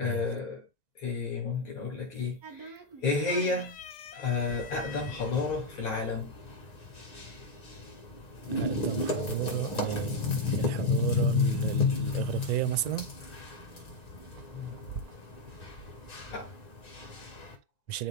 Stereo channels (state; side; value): late; right; 1.9 ms